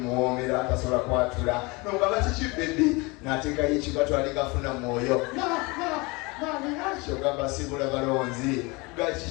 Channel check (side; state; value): right; quieter; 26.0 dB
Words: atasobola kwatula nonga bakiki bebbi n'ateekayo ekigato aligafuna mwoyo Mariachi ogamba sibula balonzi